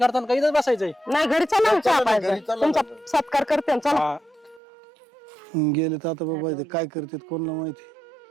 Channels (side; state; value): left; drops out; at 4.6 s